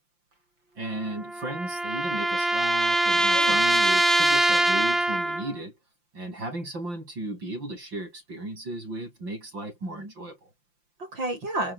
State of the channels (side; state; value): left; late; 5.8 ms